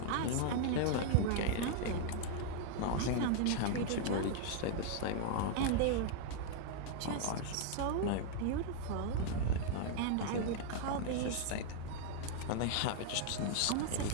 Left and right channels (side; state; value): both; different; correlation 0.00